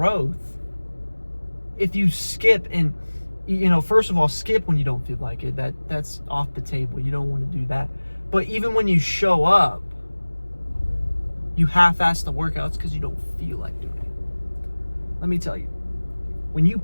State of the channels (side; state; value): both; inverted; correlation -1.00